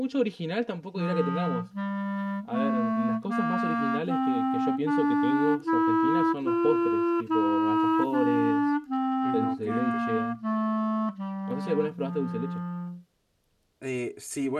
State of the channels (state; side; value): identical; both; correlation 1.00